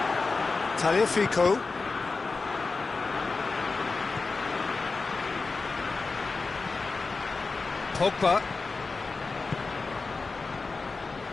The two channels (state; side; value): quieter; right; 4.0 dB